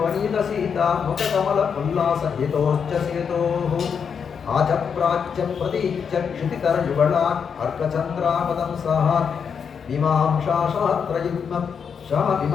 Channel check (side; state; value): right; quieter; 6.7 dB